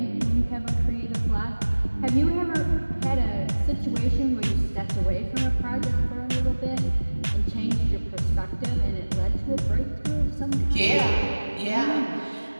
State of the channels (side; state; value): both; inverted; correlation -1.00